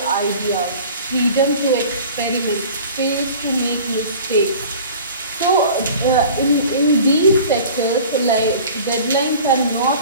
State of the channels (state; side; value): inverted; both; correlation -0.43